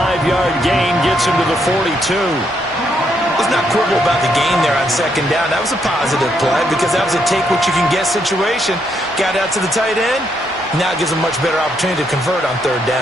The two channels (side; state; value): both; normal; correlation 0.76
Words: gain gets him to the 42. Let's not quibble about the gain there on second down. That was a positive play because that was a take-what-you-can-get situation. Got out to the tight end. Now it gives them a much better opportunity to convert on third